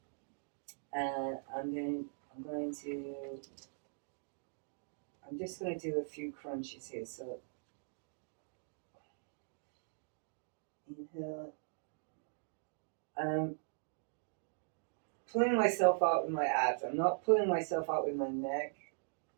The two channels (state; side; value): silent; left; digital silence